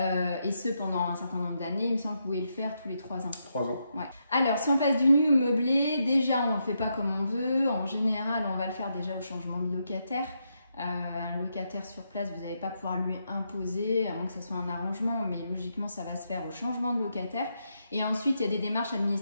ce pendant un certain nombre d'années. Il me semble que vous pouvez le faire tous les 3 ans. 3 ans. Ouais. Alors si on passe du nu au meublé, déjà on ne le fait pas comme on veut, en général on va le faire déjà au changement de locataire. Un locataire sur place, vous n'allez pas pouvoir lui imposer, à moins que ce soit un arrangement, mais logiquement ça va se faire au changement de locataire. Et ensuite il y a des démarches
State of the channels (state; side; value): inverted; both; correlation -0.81